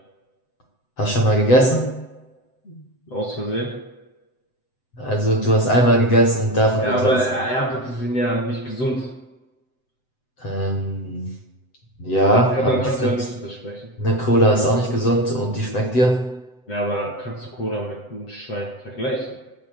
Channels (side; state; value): right; late; 7.9 ms